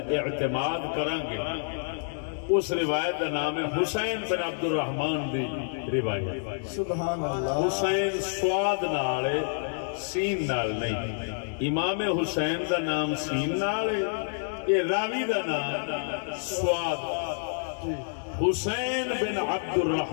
اعتماد کریں گے اس روایت کا نام ہے حسین بن عبد الرحمن دی روایت سبحان اللہ حسین سواد نال سین نال نہیں امام حسین دا نام سین نال یہ راوی دا نام سواد حسین بن عبد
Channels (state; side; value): silent; right; digital silence